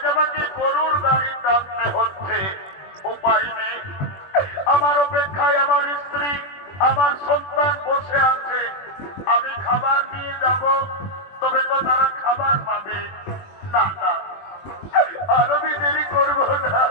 আমাকে গরুর গাড়ি টানতে হচ্ছে। উপায় নেই, আমার অপেক্ষায় আমার স্ত্রী, আমার সন্তান বসে আছে। আমি খাবার নিয়ে যাব, তবে তো তারা খাবার পাবে না। না, আর আমি দেরি করবো না,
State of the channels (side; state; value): right; late; 21 ms